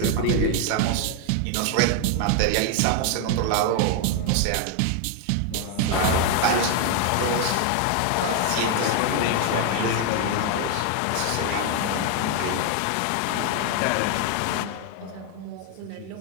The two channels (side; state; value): both; different; correlation 0.01